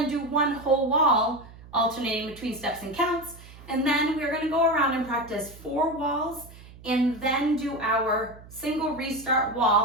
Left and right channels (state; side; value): noise; right; hum, 19 dB below the sound